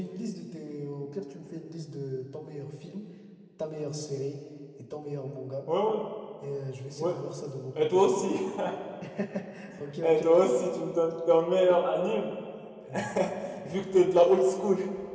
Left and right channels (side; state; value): both; identical; correlation 1.00